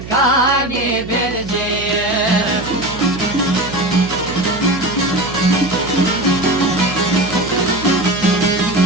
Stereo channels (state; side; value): noise; right; hum, 13 dB below the sound